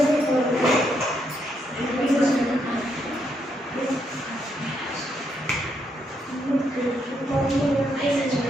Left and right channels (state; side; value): normal; both; correlation 0.77